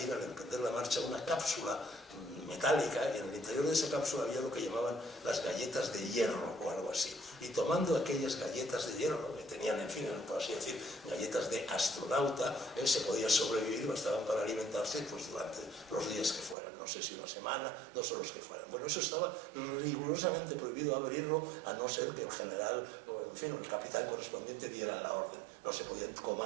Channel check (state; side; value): drops out; left; at 16.6 s